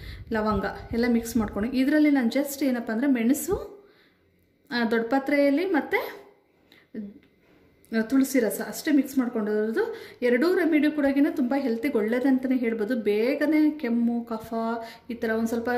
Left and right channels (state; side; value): identical; both; correlation 1.00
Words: ಲವಂಗ ಎಲ್ಲ ಮಿಕ್ಸ್ ಮಾಡ್ಕೊಂಡು ಇದರಲ್ಲಿ ನಾನು ಜಸ್ಟ್ ಏನಪ್ಪ ಅಂದರೆ ಮೆಣಸು, ದೊಡ್ಡಪತ್ರೆಯಲ್ಲಿ ಮತ್ತು ತುಳಸಿ ರಸ ಅಷ್ಟೇ ಮಿಕ್ಸ್ ಮಾಡ್ಕೊಂಡಿರೋದು. 2 ರೆಮಿಡಿ ಕೂಡ ತುಂಬ ಹೆಲ್ತಿಗೆ ಒಳ್ಳೇದಂತಲೇ ಹೇಳ್ಬೋದು. ಬೇಗನೆ ಕೆಮ್ಮು ಕಫ ಈ ಥರ ಒಂದು ಸ್ವಲ್ಪ